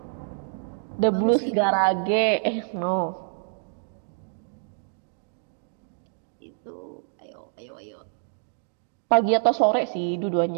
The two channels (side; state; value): left; silent; digital silence